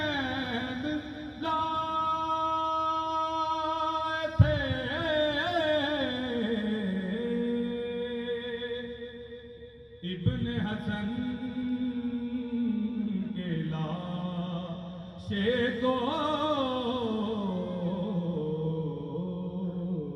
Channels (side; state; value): both; identical; correlation 1.00